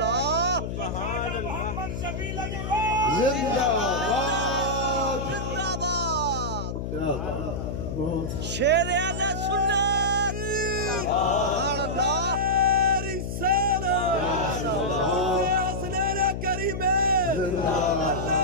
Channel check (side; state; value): left; noise; hum, 4 dB below the sound